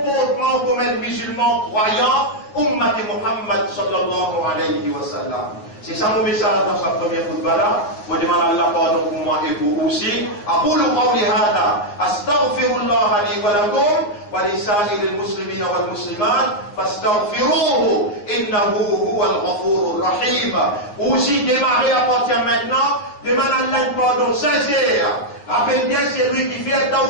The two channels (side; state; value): right; late; 9.8 ms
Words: comme un musulman croyant, Ummat Muhammad sallallahu alayhi wa sallam. C'est ça mon message dans sa première khutbah là. Je demande à Allah pardon pour moi et pour vous aussi. أقول قولي هذا أستغفر الله لي ولكم ولسائر المسلمين والمسلمات فاستغفروه إنه هو الغفور الرحيم. Aussi démarrer à partir maintenant. Demande à Allah pardon sincère. Rappelle bien c'est lui qui fait un temps